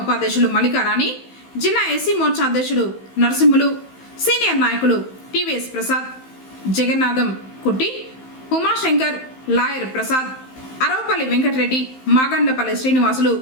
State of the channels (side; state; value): right; late; 15 ms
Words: ఉపాధ్యక్షులు మల్లికారాణి, జిల్లా ఎస్సీ మోర్చా అధ్యక్షుడు నరసింహులు, సీనియర్ నాయకులు టీవీఎస్ ప్రసాద్, జగన్నాథం కుట్టి, ఉమాశంకర్, లాయర్ ప్రసాద్, అరవపల్లి వెంకటరెడ్డి, మాగండ్లపల్లి శ్రీనివాసులు,